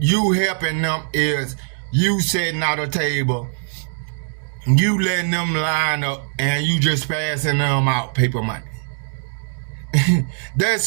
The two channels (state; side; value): silent; left; digital silence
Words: helping them is you setting out a table, you letting them line up, and you just passing them out paper money.